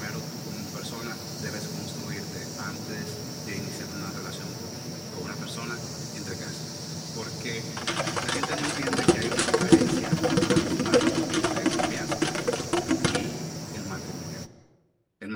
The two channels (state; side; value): identical; both; correlation 1.00